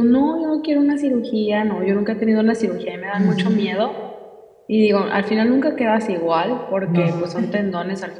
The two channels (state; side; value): identical; both; correlation 1.00